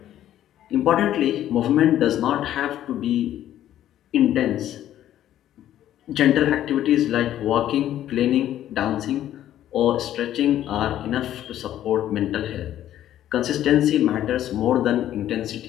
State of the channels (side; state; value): right; quieter; 12.1 dB